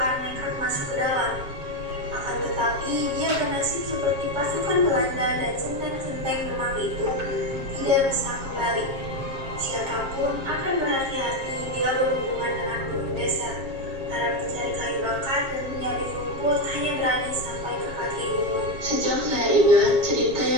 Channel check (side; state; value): left; late; 7.4 ms